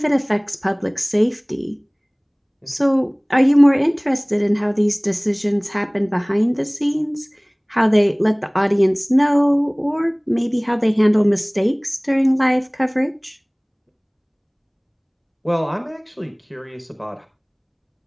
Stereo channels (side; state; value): both; identical; correlation 1.00